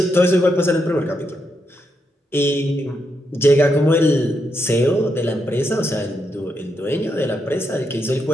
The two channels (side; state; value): both; normal; correlation 0.82